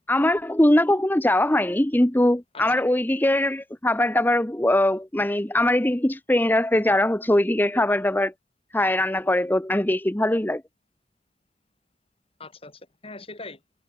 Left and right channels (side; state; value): both; normal; correlation 0.85